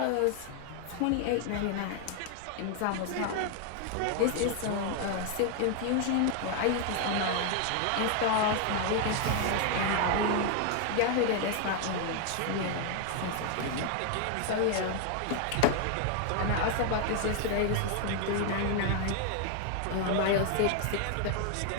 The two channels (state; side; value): different; both; correlation 0.00